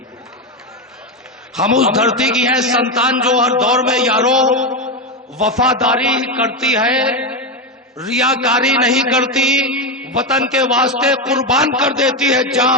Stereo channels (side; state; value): both; normal; correlation 0.11